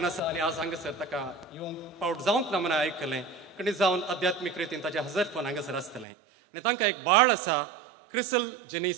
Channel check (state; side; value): drops out; left; at 6.1 s